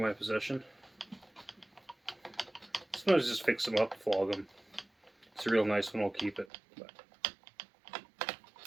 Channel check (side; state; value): left; drops out; at 6.5 s